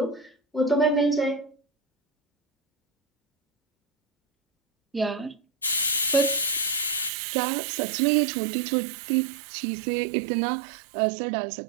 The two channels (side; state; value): left; drops out; at 7.1 s